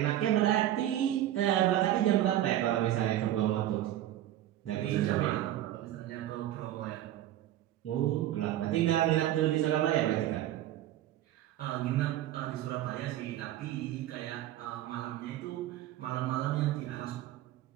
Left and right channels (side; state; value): left; quieter; 13.1 dB